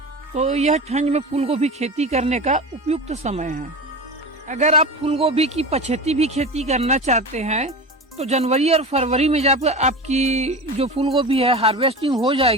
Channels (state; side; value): normal; both; correlation 0.28